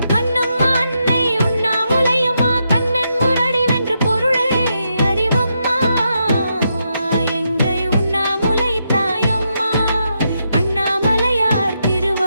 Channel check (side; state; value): both; inverted; correlation -0.82